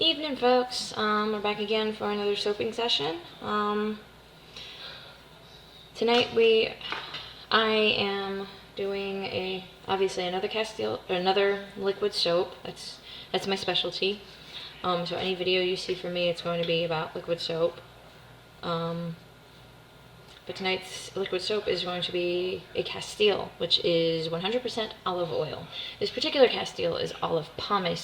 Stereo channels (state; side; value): identical; both; correlation 1.00